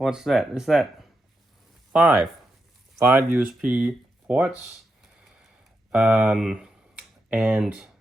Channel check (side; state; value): both; normal; correlation 0.85